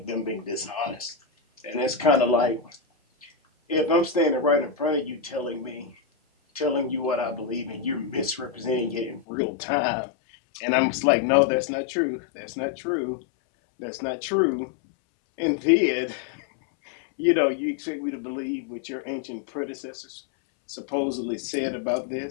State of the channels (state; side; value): drops out; right; at 9.2 s